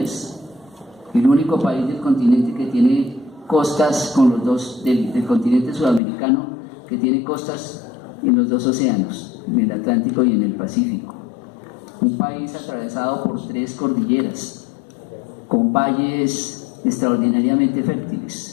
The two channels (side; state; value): right; drops out; at 6.0 s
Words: El único país del continente que tiene costas con los dos, del continente sudamericano, que tiene costas en los dos océanos, en el Atlántico y en el Pacífico. Un país atravesado por 3 cordilleras, con valles extraordinariamente